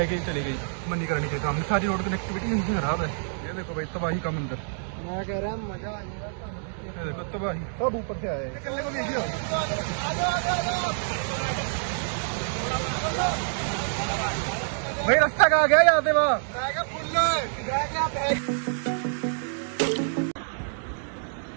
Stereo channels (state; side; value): silent; left; digital silence